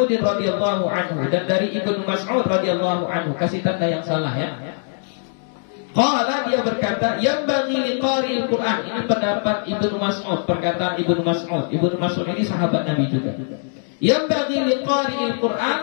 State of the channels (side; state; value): right; silent; digital silence